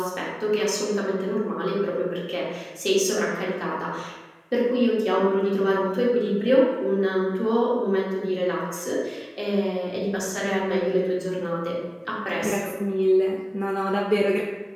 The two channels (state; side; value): identical; both; correlation 1.00